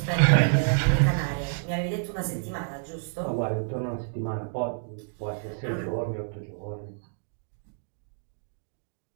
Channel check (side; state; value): left; silent; digital silence